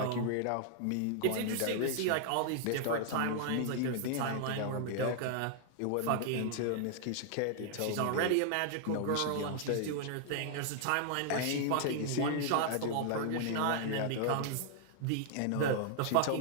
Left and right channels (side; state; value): both; different; correlation 0.00